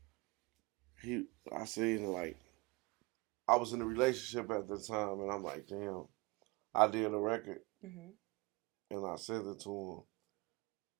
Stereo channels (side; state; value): left; quieter; 25.1 dB